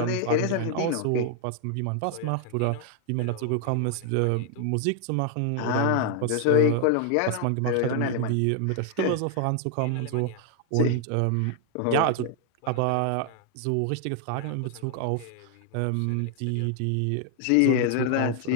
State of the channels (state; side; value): different; both; correlation 0.00